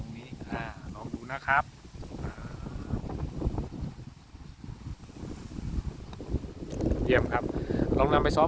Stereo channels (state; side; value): identical; both; correlation 1.00